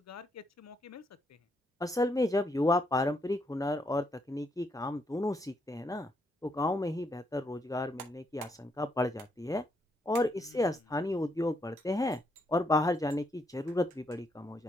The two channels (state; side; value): normal; both; correlation 0.76